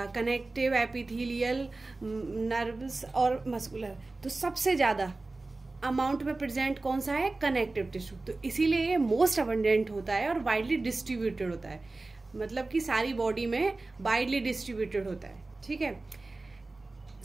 एपिथेलियल, नर्व्स और मस्कुलर। तो सबसे ज़्यादा अमाउंट में प्रेजेंट कौन सा है? Connective tissue. तो इसीलिए ये मोस्ट अबंडेंट होता है और वाइडली डिस्ट्रीब्यूटेड होता है, मतलब कि सारी बॉडी में वाइडली डिस्ट्रीब्यूटेड होता है। ठीक है,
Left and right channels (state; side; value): quieter; left; 3.3 dB